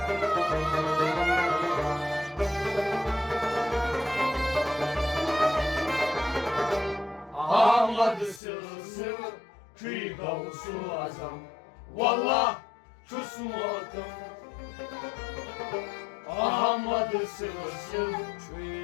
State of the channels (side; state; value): right; drops out; at 8.4 s